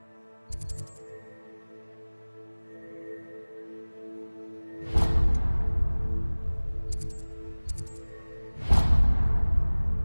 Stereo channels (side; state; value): both; inverted; correlation -1.00